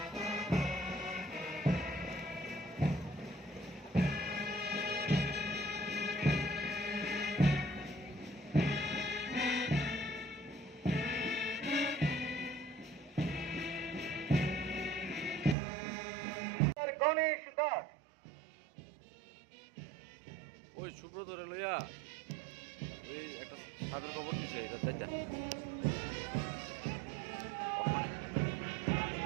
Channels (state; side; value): drops out; left; at 15.6 s